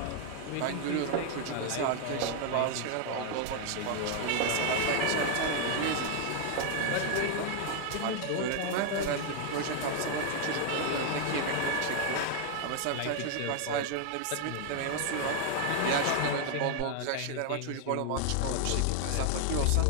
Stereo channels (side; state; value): both; different; correlation 0.00